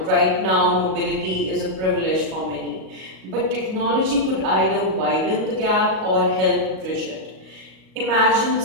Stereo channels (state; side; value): late; left; 38 ms